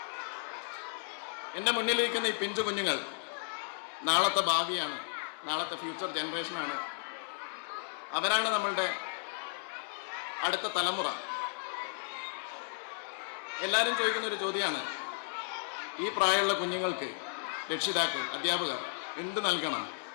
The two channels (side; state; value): right; silent; digital silence